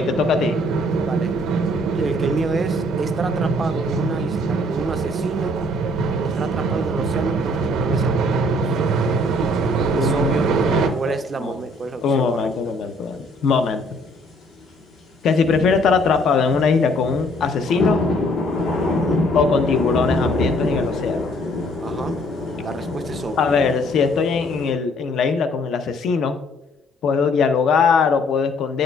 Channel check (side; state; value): both; normal; correlation 0.62